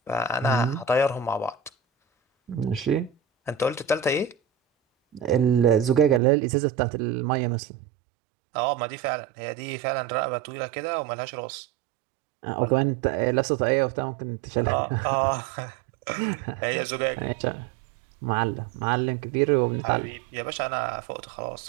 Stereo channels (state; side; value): drops out; left; at 6.2 s